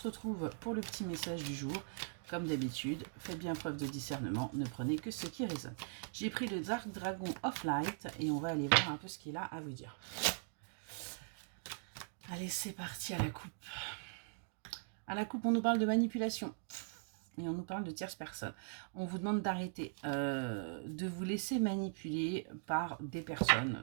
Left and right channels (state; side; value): silent; left; digital silence